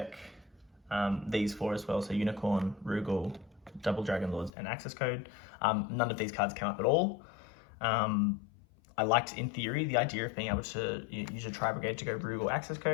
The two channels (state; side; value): drops out; right; at 4.5 s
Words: these 4 as well. So Unicorn, Rugal, Double Dragon Lords, and Access Code. None of these cards came up at all. I liked, in theory, the idea of being able to use a Tri-Brigade to go Rugal Access